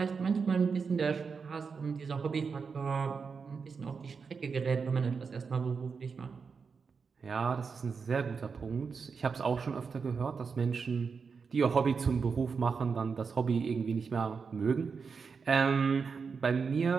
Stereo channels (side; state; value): left; quieter; 5.4 dB